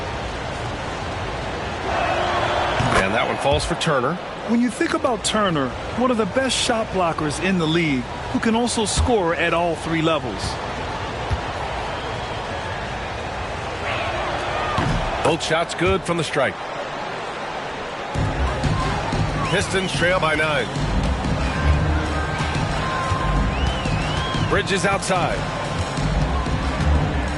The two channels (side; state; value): both; identical; correlation 1.00